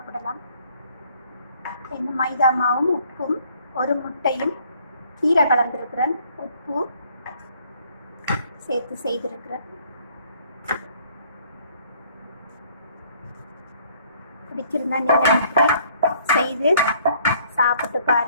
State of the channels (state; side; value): inverted; both; correlation -0.61